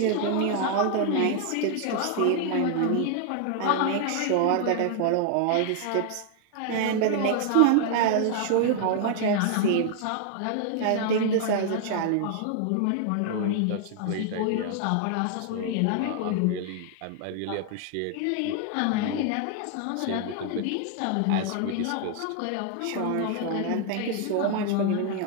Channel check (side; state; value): both; different; correlation 0.00